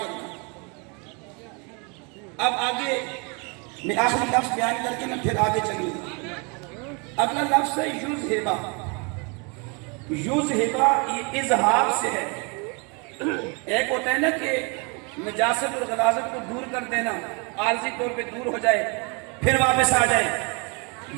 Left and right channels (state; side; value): quieter; left; 32.4 dB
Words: کرنا۔ اب آگے میں آخری لفظ بیان کر کے میں پھر آگے چلوں گا۔ اگلا لفظ ہے یذھب۔ یذھب یہ اظہار سے ہے۔ ایک ہوتا ہے نا کہ نجاست اور غلاظت کو دور کر دینا، عارضی طور پہ دور ہو جائے پھر واپس آ جائے،